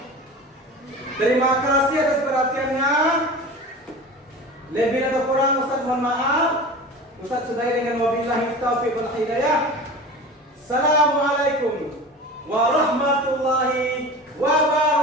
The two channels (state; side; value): normal; both; correlation 0.34